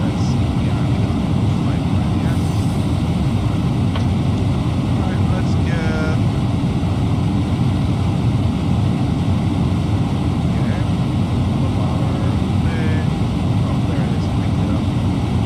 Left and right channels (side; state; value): both; identical; correlation 1.00